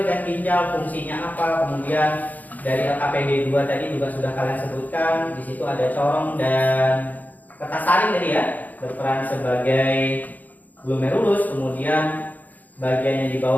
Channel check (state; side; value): late; right; 0.081 ms